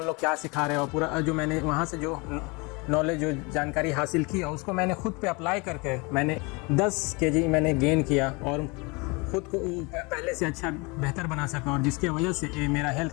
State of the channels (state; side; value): quieter; right; 28.1 dB